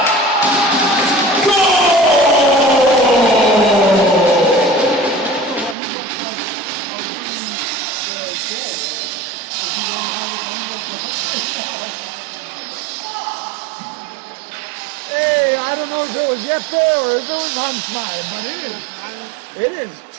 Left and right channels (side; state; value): left; drops out; at 5.8 s